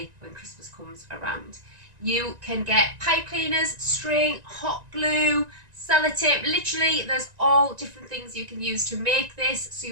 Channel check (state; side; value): late; left; 1.9 ms